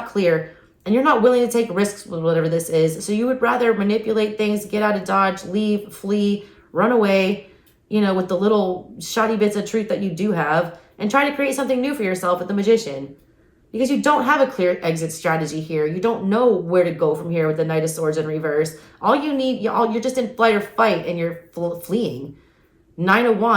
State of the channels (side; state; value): both; identical; correlation 1.00